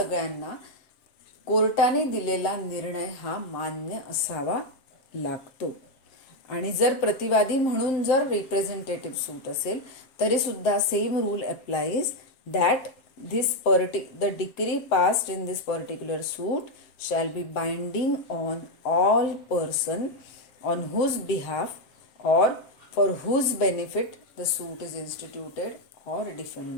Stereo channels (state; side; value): late; right; 7.7 ms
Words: कोर्टाने दिलेला निर्णय हा मान्य असावा लागतो. आणि जर प्रतिवादी म्हणून जर रिप्रेझेंटेटिव्ह सूट असेल तरी सुद्धा same rule applies that the decree passed in this particular suit shall be binding on all person on whose behalf or for whose benefit the suit is instituted or